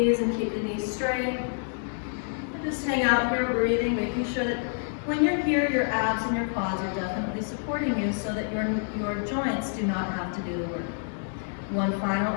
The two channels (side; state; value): right; silent; 59 dB below the other